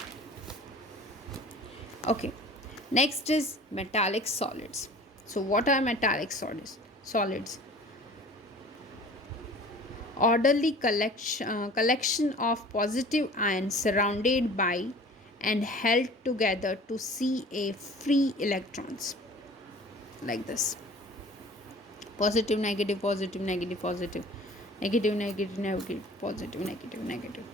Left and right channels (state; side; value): normal; both; correlation 0.45